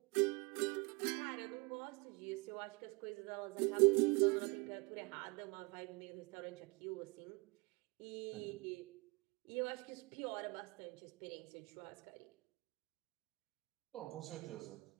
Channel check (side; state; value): left; quieter; 27.4 dB